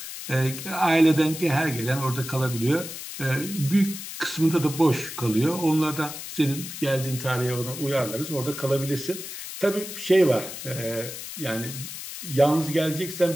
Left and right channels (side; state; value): left; noise; hiss, 9 dB below the sound